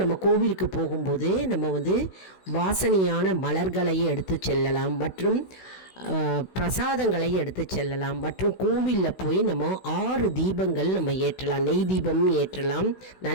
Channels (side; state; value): right; late; 16 ms